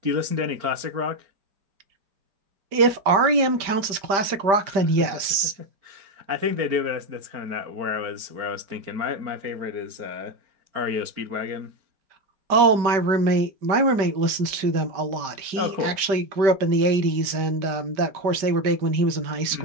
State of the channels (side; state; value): left; late; 5.1 ms